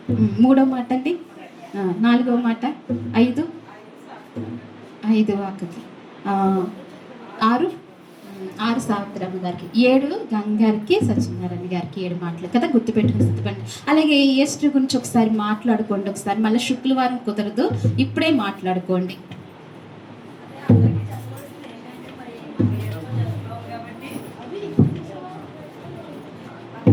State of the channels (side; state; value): both; identical; correlation 1.00